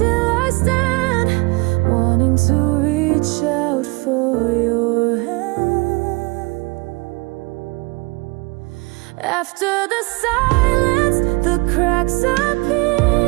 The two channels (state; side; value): quieter; left; 26.7 dB